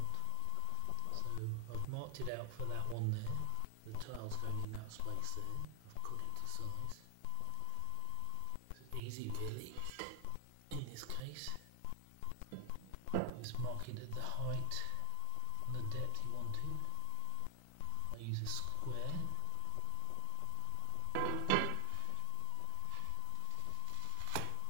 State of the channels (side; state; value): both; different; correlation 0.00